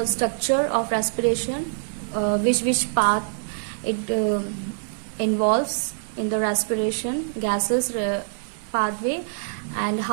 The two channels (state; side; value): silent; left; 59 dB below the other